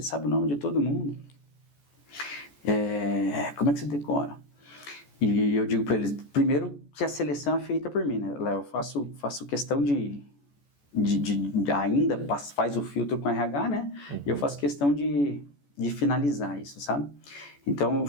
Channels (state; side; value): late; right; 14 ms